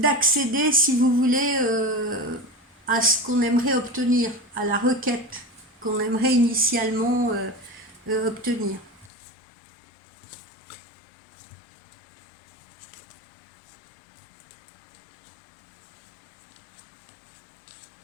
si vous voulez, à ce qu'on aimerait obtenir, à la requête qu'on aimerait initialement obtenir.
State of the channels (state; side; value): drops out; right; at 9.1 s